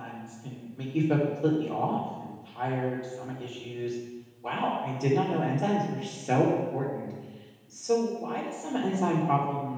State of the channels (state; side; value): identical; both; correlation 1.00